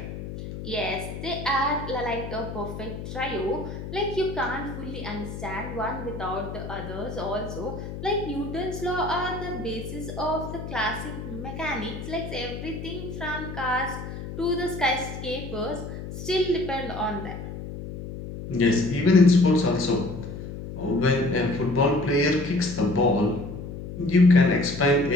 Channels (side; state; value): left; noise; hum, 9 dB below the sound